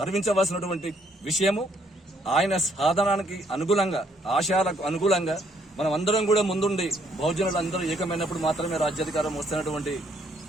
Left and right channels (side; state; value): both; normal; correlation 0.68